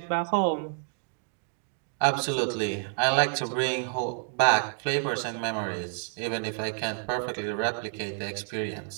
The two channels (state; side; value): silent; left; digital silence